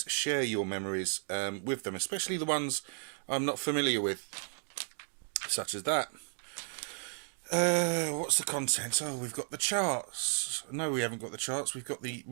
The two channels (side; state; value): left; silent; 55 dB below the other